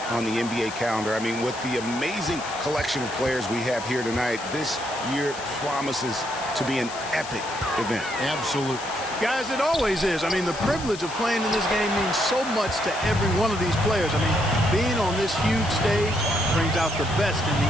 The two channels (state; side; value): noise; left; hiss, 13 dB below the sound